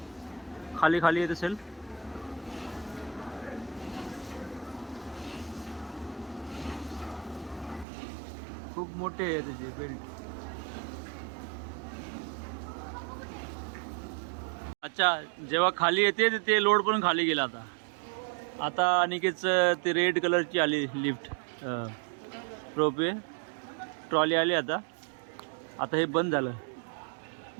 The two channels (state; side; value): drops out; left; at 7.9 s